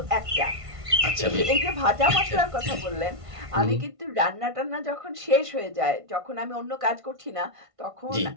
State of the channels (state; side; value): late; left; 1.5 ms